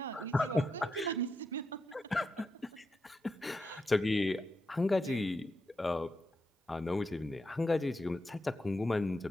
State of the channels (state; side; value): normal; both; correlation 0.86